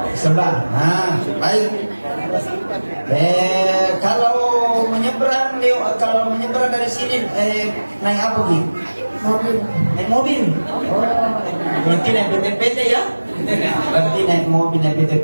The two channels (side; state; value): both; inverted; correlation -1.00